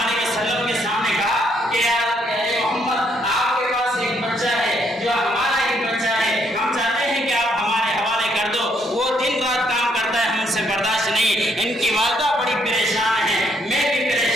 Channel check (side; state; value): both; normal; correlation 0.71